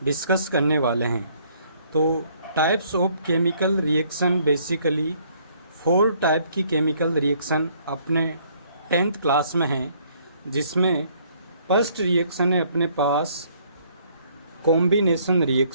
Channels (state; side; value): inverted; both; correlation -0.63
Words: डिस्कस करने वाले हैं। तो types of chemical reaction, basically 4 type की केमिकल रिएक्शन अपने 10th क्लास में हैं, जिसमें फर्स्ट रिएक्शन है अपने पास कॉम्बिनेशन